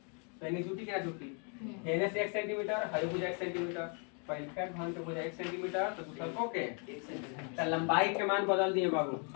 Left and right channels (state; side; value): quieter; right; 38.5 dB